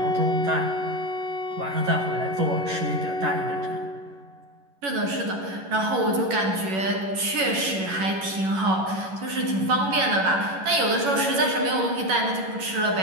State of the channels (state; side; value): late; left; 11 ms